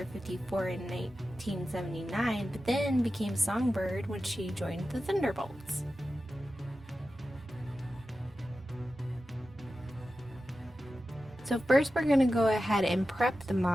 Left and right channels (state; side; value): normal; both; correlation 0.93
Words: 54 in 1979, but then became Songbird when she joined the Thunderbolts. So first we're going to go ahead and prep the